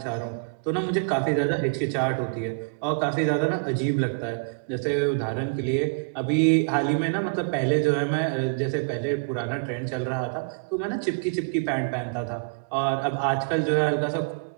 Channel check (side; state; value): left; quieter; 37.8 dB